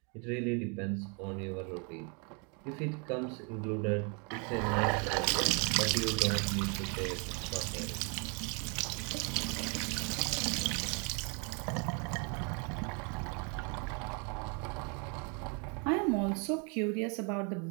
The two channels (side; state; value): left; quieter; 35.2 dB